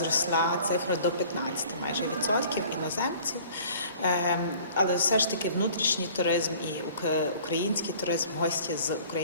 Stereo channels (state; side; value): inverted; both; correlation -0.50